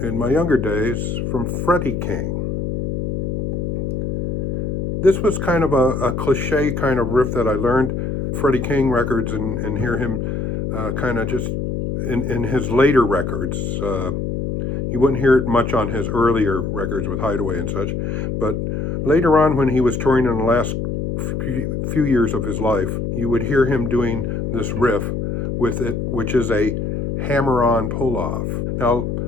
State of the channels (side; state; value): left; noise; hum, 2 dB below the sound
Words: my younger days from Freddie King. This was kind of a cliche kind of riff that I learned Freddie King records and hear him kind of just in his later records. You wouldn't hear it much on his earlier records with Hideaway and such, but later on when he was touring in the last few years of his life, you would hear him doing this riff with it, which is a hammer-on pull-off. Now,